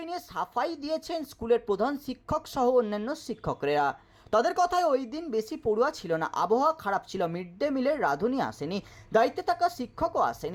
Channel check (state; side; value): identical; both; correlation 1.00